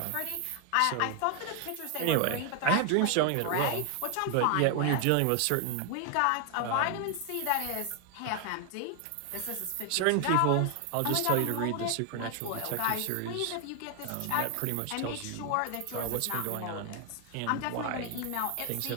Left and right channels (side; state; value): both; different; correlation 0.00